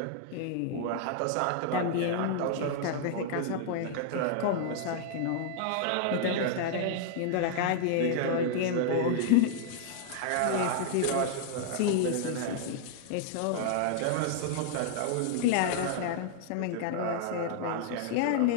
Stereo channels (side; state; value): both; different; correlation -0.01